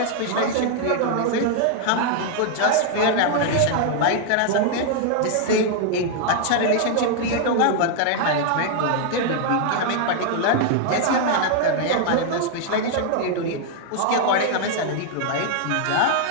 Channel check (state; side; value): different; both; correlation 0.00